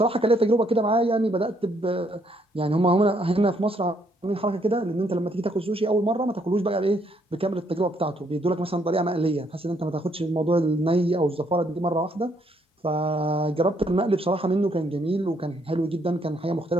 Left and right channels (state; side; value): normal; both; correlation 0.71